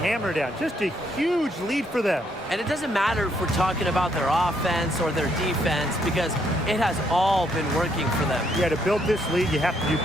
down. Just a huge lead for them. And it doesn't matter if we're talking about their offense or their defense because it has all been working for them. Yeah, to build this lead, you have to do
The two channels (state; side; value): normal; both; correlation 0.72